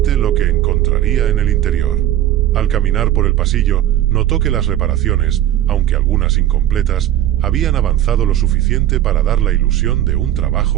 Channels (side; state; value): left; quieter; 12.4 dB